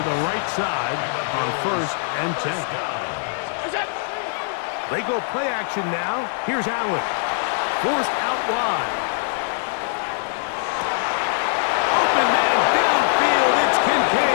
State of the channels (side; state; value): right; silent; 64 dB below the other